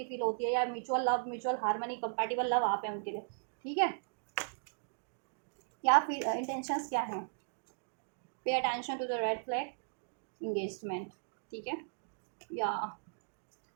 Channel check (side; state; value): left; silent; digital silence